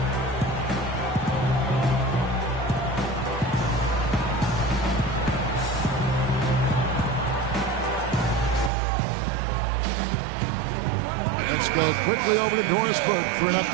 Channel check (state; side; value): drops out; left; at 8.7 s